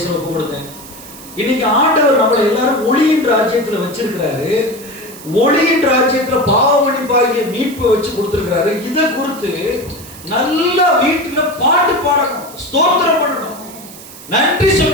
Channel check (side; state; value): right; noise; hiss, 17 dB below the sound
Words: ஒப்பு கொடுத்தேன். இன்னைக்கு ஆண்டவர் நம்மளை எல்லாரும் ஒளியின் ராஜ்யத்தில் வச்சிருக்கிறாரு. ஒளியின் ராஜ்யத்தில் பாவ மன்னிப்பாகிய மீட்பை வச்சு கொடுத்துருக்கிறாரு. இதை குறித்து நல்லா வீட்டுல பாட்டு பாடணும், ஸ்தோத்திரம் பண்ணணும், நன்றி